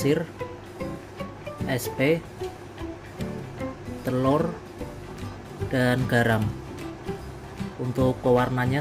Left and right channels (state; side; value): identical; both; correlation 1.00